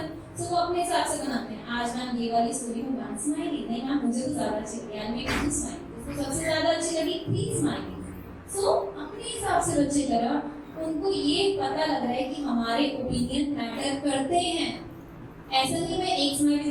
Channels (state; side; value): identical; both; correlation 1.00